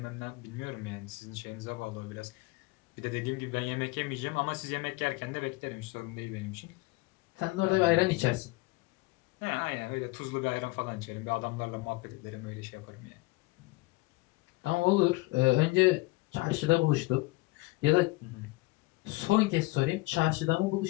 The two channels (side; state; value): right; quieter; 21.8 dB